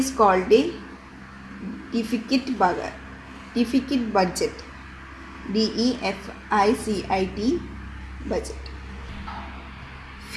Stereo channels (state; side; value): identical; both; correlation 1.00